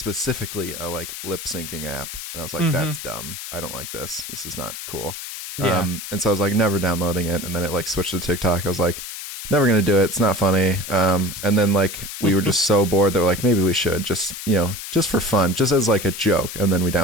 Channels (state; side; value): noise; left; hiss, 9 dB below the sound